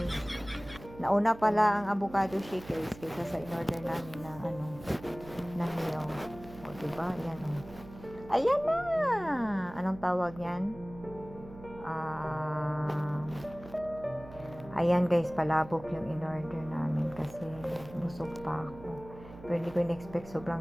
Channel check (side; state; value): right; noise; hum, 17 dB below the sound